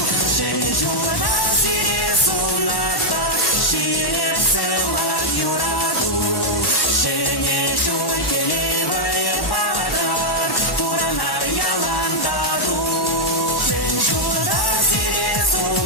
Шен жуда сире сунатпа, ширек сыла юраду, және шөлкелевай падар, пуранар яландаду. Шен жуда сире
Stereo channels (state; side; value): late; right; 1.1 ms